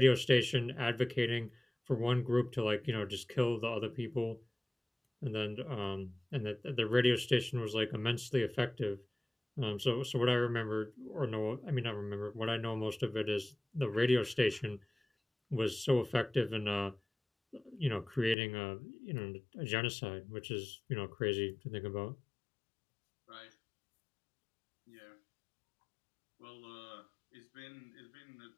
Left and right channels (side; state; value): right; drops out; at 18.4 s